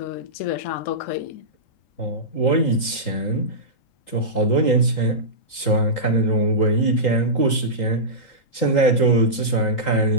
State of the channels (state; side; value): late; right; 3.8 ms